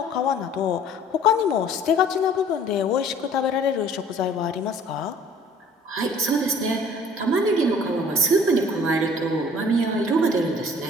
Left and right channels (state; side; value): normal; both; correlation 0.52